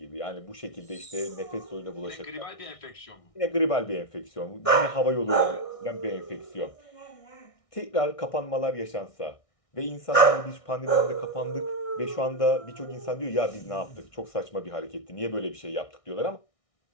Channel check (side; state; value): right; late; 1.6 ms